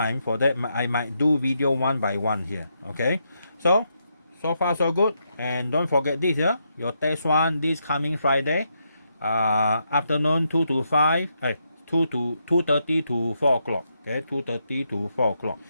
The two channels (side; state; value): both; inverted; correlation -0.81